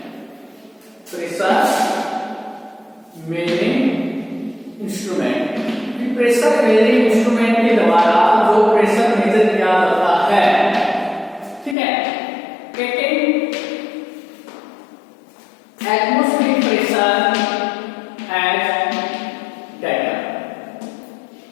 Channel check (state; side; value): drops out; right; at 11.8 s